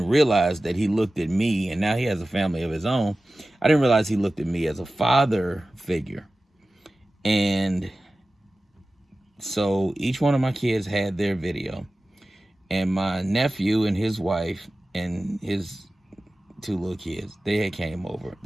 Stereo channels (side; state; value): both; normal; correlation 0.96